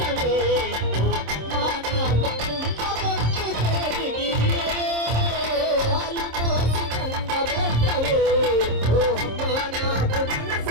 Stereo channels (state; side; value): late; left; 26 ms